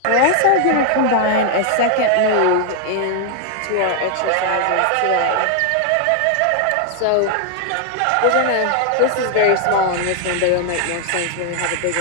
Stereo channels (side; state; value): both; different; correlation 0.00